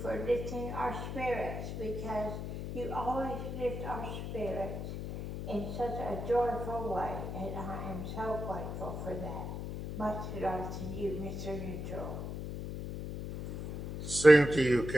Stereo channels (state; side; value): noise; left; hum, 6 dB below the sound